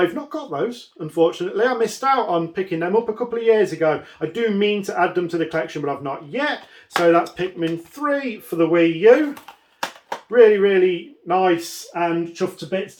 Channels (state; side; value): identical; both; correlation 1.00